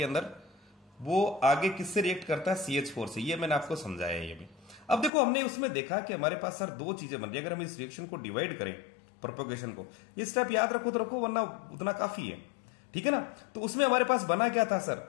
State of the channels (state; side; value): drops out; right; at 5.1 s